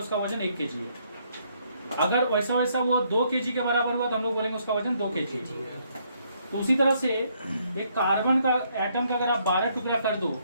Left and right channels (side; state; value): both; inverted; correlation -0.70